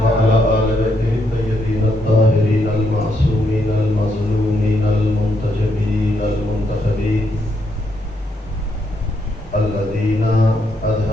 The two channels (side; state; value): both; normal; correlation 0.77